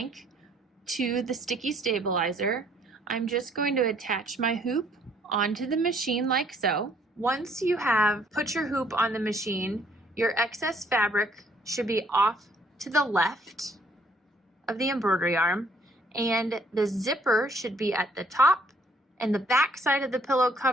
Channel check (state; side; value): normal; both; correlation 0.64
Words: to the sticky stabilizer, I'm just going to attach my hoop onto the machine like so. Once you have put your hoop on the machine, your excess fabric should be off to the left of the embroidery arm, and the zipper should be at the top, and the back side of the pillow